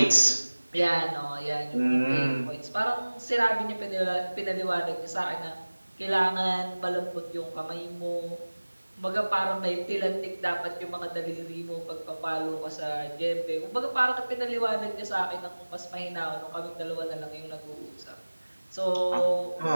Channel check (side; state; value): both; inverted; correlation -1.00